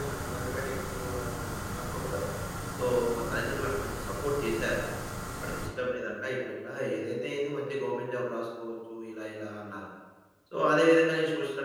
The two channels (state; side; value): identical; both; correlation 1.00